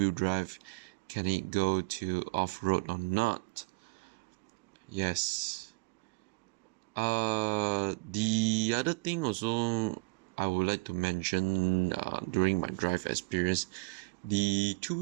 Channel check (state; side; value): quieter; left; 31.0 dB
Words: drive can it go to off-road or not. Yes. The other thing also I would like to mention during my drive experience, the